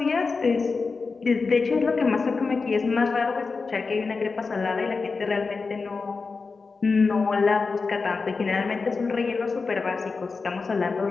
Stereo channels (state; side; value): quieter; right; 4.4 dB